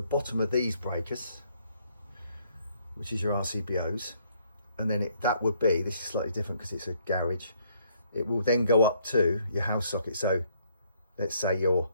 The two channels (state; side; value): inverted; both; correlation -0.68